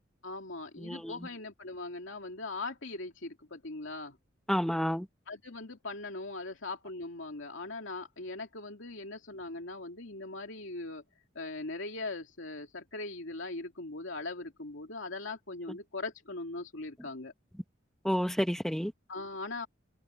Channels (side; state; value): both; normal; correlation 0.48